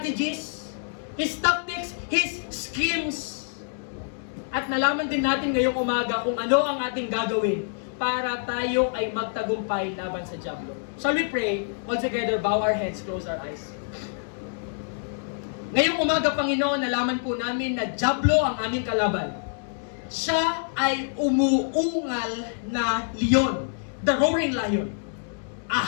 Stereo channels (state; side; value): silent; right; digital silence